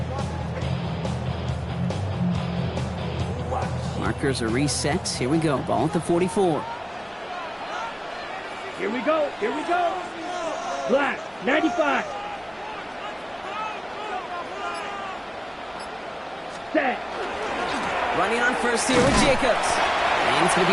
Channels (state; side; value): identical; both; correlation 1.00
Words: Markers are reset. Here we go. Ball at the 44. Here we go. Black, 95. Set. Running on first here with Jacobs. And it's going to